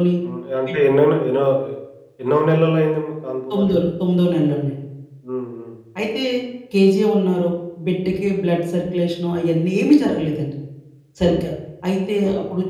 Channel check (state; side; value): identical; both; correlation 1.00